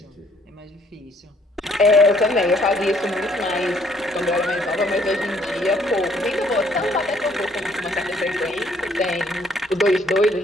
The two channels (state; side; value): normal; both; correlation 0.64